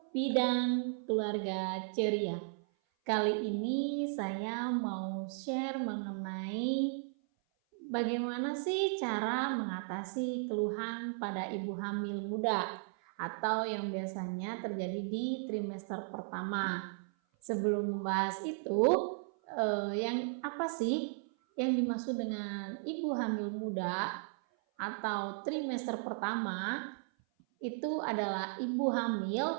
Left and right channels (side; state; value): left; silent; 54 dB below the other